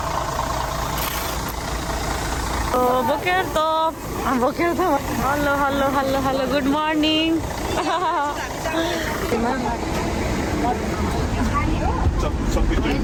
बोकेर त hello hello hello hello good morning.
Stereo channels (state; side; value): identical; both; correlation 1.00